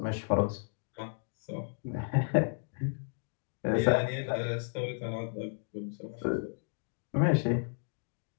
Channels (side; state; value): right; silent; digital silence